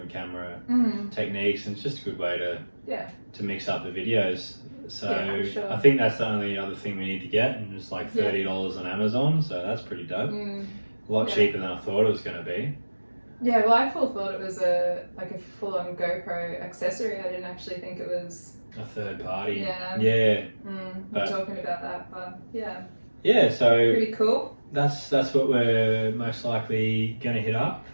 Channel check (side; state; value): both; inverted; correlation -1.00